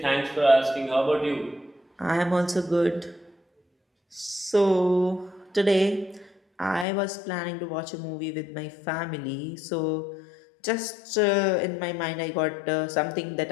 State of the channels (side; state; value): right; drops out; at 6.9 s